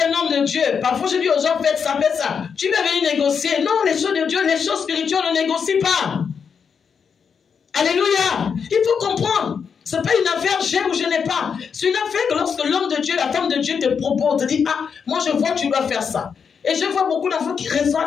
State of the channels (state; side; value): quieter; right; 6.5 dB